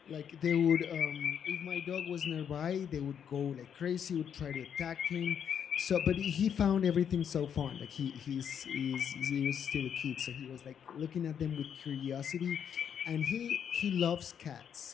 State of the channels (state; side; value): quieter; right; 8.2 dB